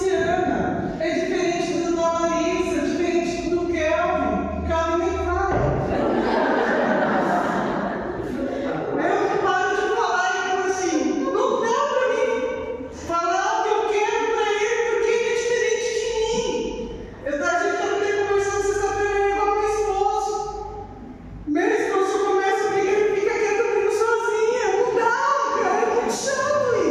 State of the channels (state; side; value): identical; both; correlation 1.00